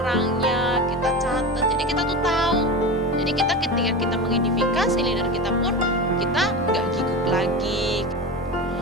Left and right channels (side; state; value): both; normal; correlation 0.25